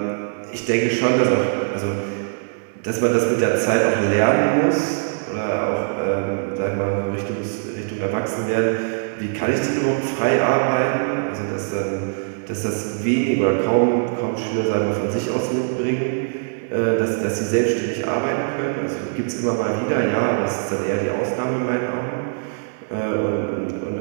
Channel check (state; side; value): silent; left; digital silence